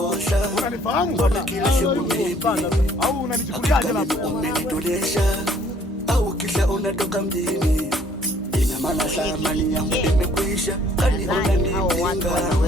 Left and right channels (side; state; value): both; normal; correlation 0.60